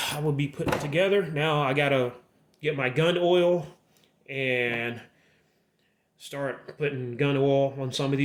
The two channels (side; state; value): both; identical; correlation 1.00